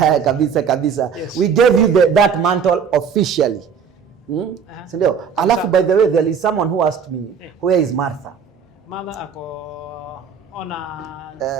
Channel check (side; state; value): left; quieter; 6.7 dB